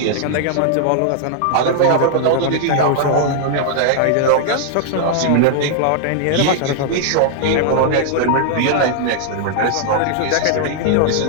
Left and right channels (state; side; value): different; both; correlation -0.01